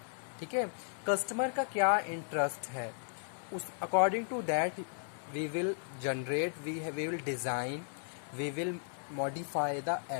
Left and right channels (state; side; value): silent; right; 54 dB below the other